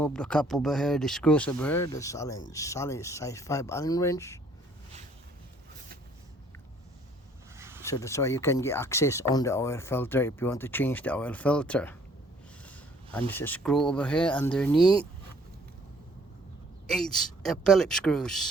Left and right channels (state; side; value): normal; both; correlation 0.60